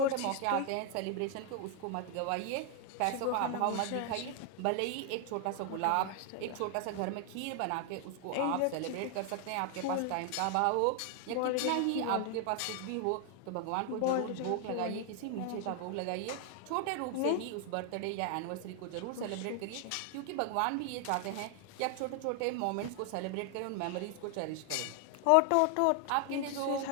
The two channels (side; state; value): both; different; correlation 0.00